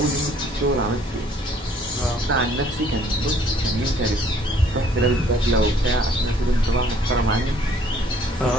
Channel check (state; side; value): normal; both; correlation 0.60